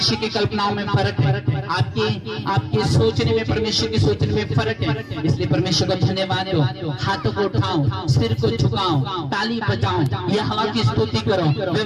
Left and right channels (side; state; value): both; identical; correlation 1.00